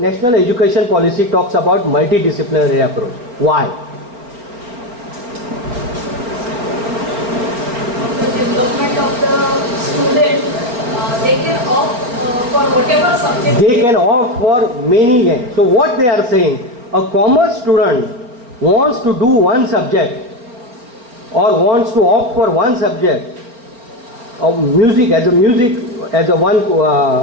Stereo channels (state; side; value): late; left; 4.3 ms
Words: Education Policy talks about multidisciplinary approach. Why? The development of the student, they can opt for whatever subject. They can opt for many games. So what they are saying, a commerce student wants to do one subject or wants to opt for one subject of music as a one